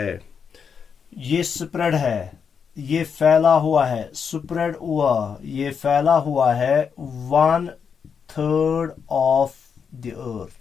ये स्प्रेड है, ये फैला हुआ है, स्प्रेड हुआ, ये फैला हुआ है 1/3 of the earth.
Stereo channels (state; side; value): quieter; right; 6.6 dB